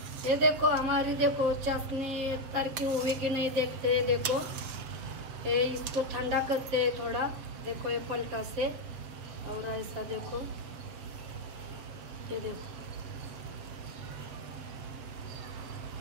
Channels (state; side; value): late; left; 7.4 ms